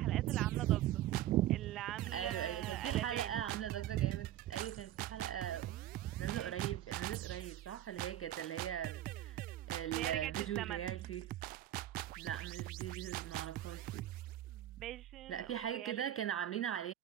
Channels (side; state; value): left; quieter; 12.7 dB